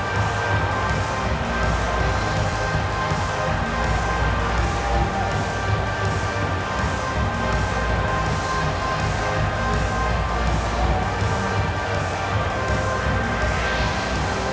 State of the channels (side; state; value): both; identical; correlation 1.00